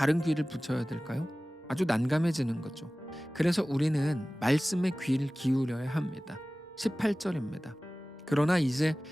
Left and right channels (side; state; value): both; normal; correlation 0.97